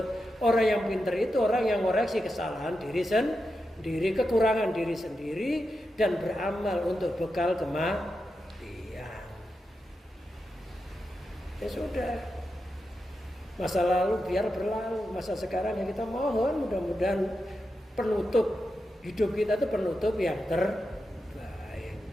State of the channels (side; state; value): both; normal; correlation 0.88